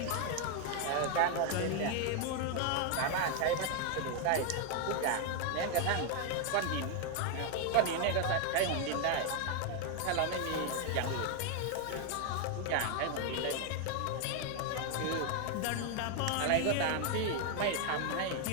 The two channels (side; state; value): both; different; correlation 0.01